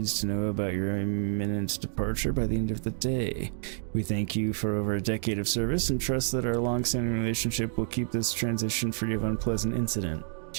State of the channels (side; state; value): left; silent; digital silence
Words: to know about your imminent departure by the end of the day. We thank you for over a decade of service and trust that our long-standing relationship will keep this transition free of unpleasant incident.